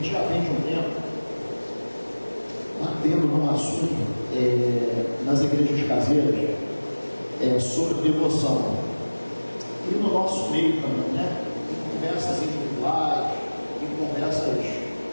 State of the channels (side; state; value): both; inverted; correlation -1.00